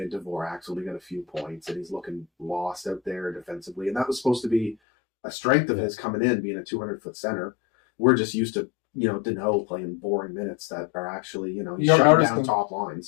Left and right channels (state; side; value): drops out; right; at 4.8 s